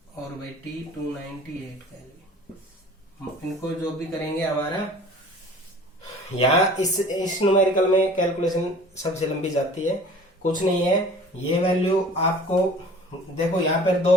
और बाई T 298 कैलोरी। इनको जो भी करेंगे हमारा यहाँ इस न्यूमेरिकल में कैलकुलेशन सबसे लंबी जाती है, कुछ नहीं है। ये वैल्यू आपको देखो यहाँ पर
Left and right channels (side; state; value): both; normal; correlation 0.46